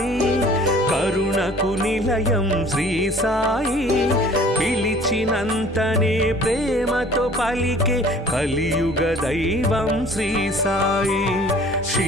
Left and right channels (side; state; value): both; normal; correlation 0.51